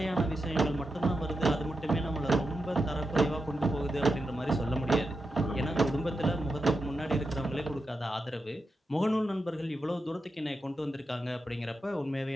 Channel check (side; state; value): both; normal; correlation 0.88